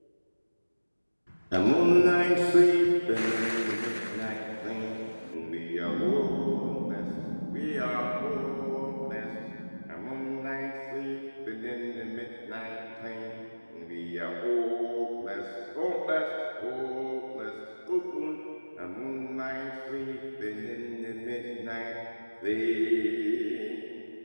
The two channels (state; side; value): inverted; both; correlation -1.00